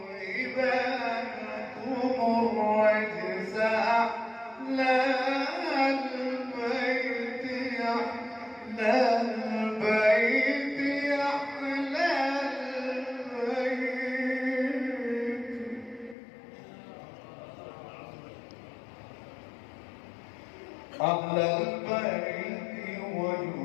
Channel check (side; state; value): right; drops out; at 16.2 s